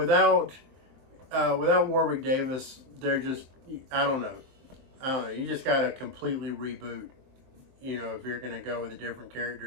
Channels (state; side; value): late; left; 23 ms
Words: Warwick Davis, they're just, I don't know. You just got to completely reboot, if you're going to go with a different